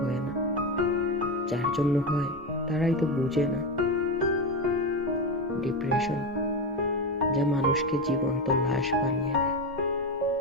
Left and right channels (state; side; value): normal; both; correlation 0.16